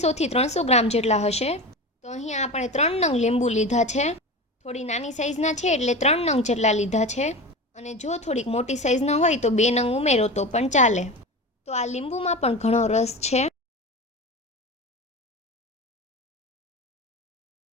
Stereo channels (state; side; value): normal; both; correlation 0.28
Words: થી 300 ગ્રામ જેટલા હશે. તો અહીંયા આપણે 3 નંગ લીંબુ લીધા છે. થોડી નાની સાઈઝના છે એટલે 3 નંગ જેટલા લીધા છે. અને જો થોડીક મોટી સાઈઝના હોય તો 2 નંગ ઉમેરો તો પણ ચાલે. તો આ લીંબુમાં પણ ઘણો રસ છે.